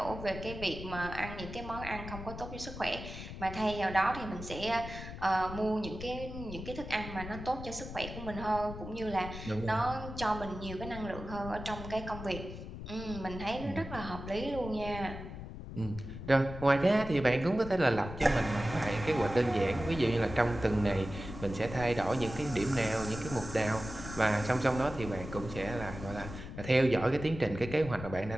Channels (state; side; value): noise; left; rumble, 10 dB below the sound